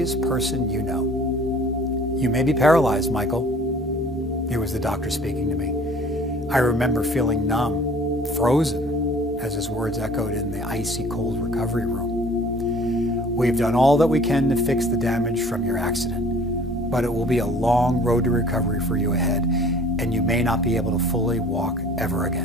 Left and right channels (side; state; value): both; normal; correlation 0.50